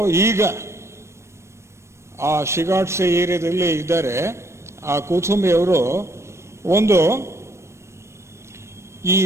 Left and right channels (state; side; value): late; left; 0.13 ms